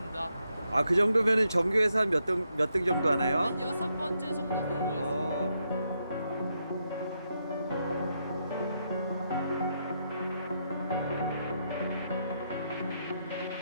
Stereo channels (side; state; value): both; inverted; correlation -0.80